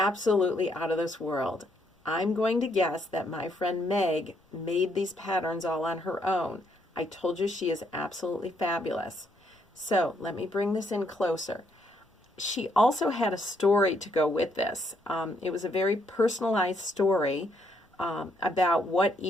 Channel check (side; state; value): both; normal; correlation 0.73